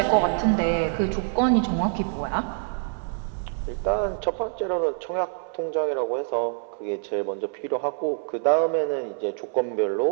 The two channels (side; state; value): left; silent; 61 dB below the other